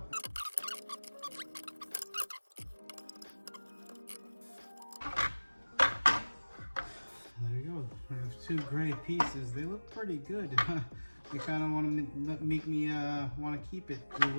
There you go. We have two gray pieces. They look pretty good. They kind of want to make me want to keep it the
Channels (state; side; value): inverted; both; correlation -1.00